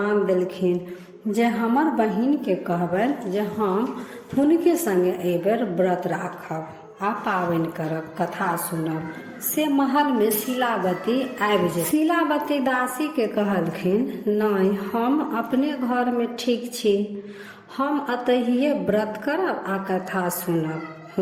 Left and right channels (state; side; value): identical; both; correlation 1.00